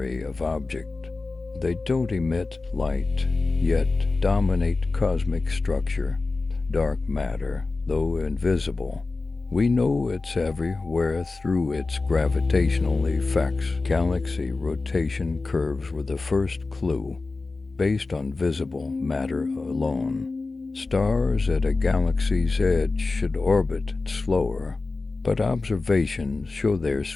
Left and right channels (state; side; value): quieter; right; 3.7 dB